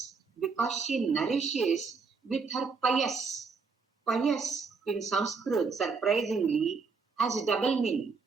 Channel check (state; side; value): quieter; left; 4.9 dB